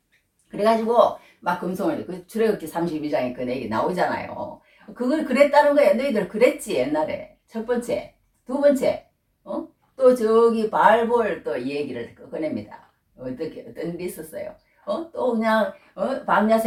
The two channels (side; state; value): both; identical; correlation 1.00